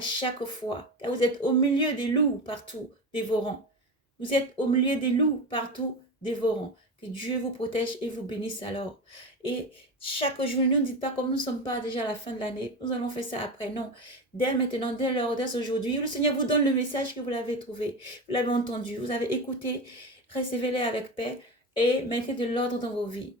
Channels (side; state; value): both; normal; correlation 0.23